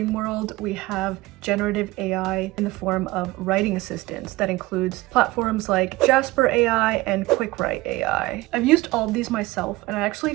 world, we have generative AI in the form of writing assistants that includes platforms like JASPER AI and QuickWrite AI. I've used all of these myself, and I actually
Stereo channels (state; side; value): quieter; left; 19.9 dB